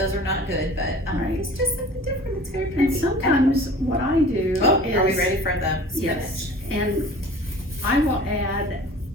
are not good, but, Right. it's just something different, it's very And pretty. sometimes what I do Oh, is. are we ready for the spinach? Yes, and I will add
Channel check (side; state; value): both; normal; correlation 0.44